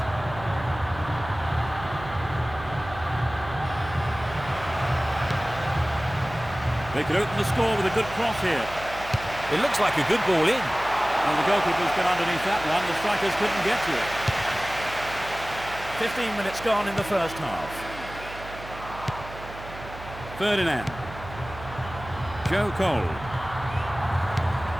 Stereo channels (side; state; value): right; noise; hum, 14 dB below the sound